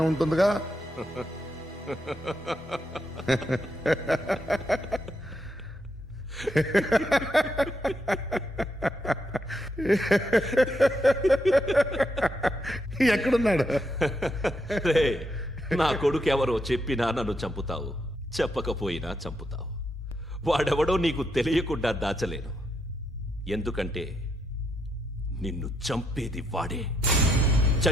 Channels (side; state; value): both; normal; correlation 0.79